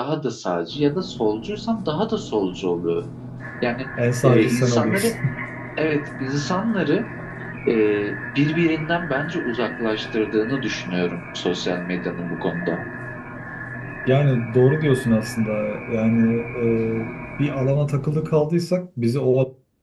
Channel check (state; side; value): identical; both; correlation 1.00